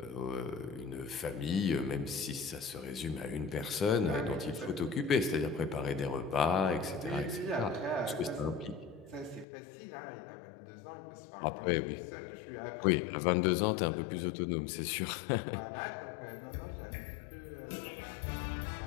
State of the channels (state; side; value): drops out; right; at 9.5 s